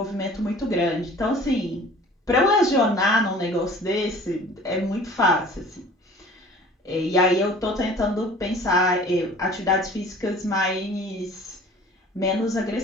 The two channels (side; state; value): both; normal; correlation 0.47